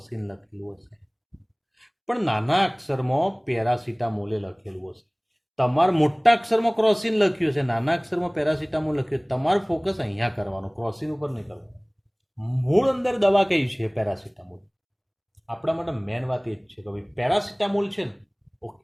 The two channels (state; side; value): identical; both; correlation 1.00